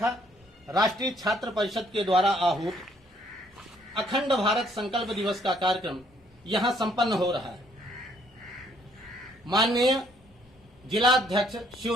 राष्ट्रीय छात्र परिषद के द्वारा आहूत अखंड भारत संकल्प दिवस का कार्यक्रम यहाँ संपन्न हो रहा है। माननीय जिलाध्यक्ष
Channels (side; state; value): both; normal; correlation 0.66